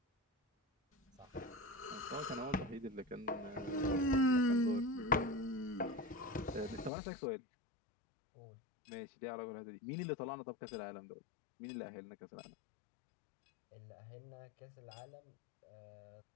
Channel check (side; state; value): right; drops out; at 6.9 s